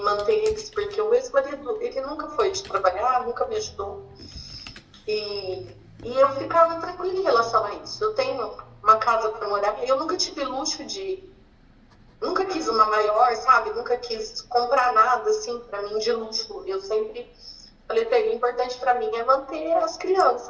eles, porque o ex-marido, ele nunca foi de trabalhar, nunca me ajudou. E eu ficava tranquila em relação a isso. Eu tenho uma casa para morar, eu nunca tive luxo de. Nunca quis uma maior, sabe? Nunca quis comprar nada assim para mim de luxo. Eu sempre falei para ele: o importante para mim é manter as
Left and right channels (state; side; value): identical; both; correlation 1.00